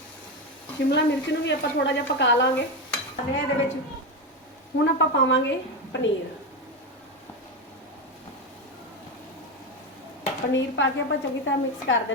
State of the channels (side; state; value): both; normal; correlation 0.13